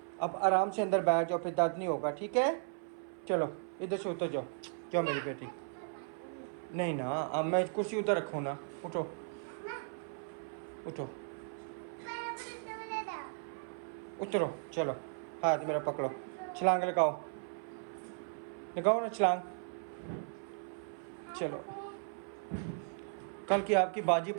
अब आराम से अंदर बैठ जाओ, फिर दर्द नहीं होगा, ठीक है? चलो इधर से उतर जाओ, जाओ मेरी बेटी। नहीं ना, अब मैं कुर्सी उधर रखूँ ना, उठो उठो उतरो, चलो हाथ मेरा पकड़ो, छलांग लगाओ ना छलांग। चलो, कल की आपकी बाजी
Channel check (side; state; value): left; silent; 54 dB below the other